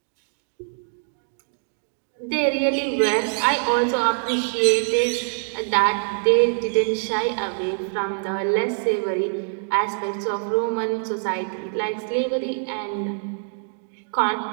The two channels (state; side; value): silent; left; digital silence